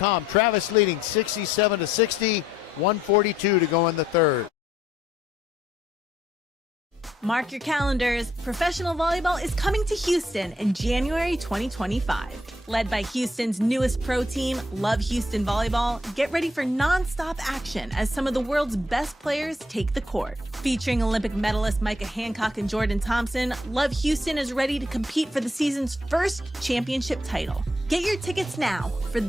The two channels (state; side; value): normal; both; correlation 0.71